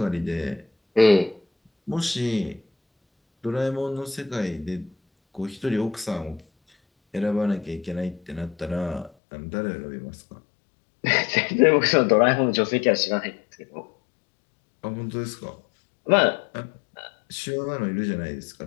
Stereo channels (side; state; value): right; drops out; at 9.1 s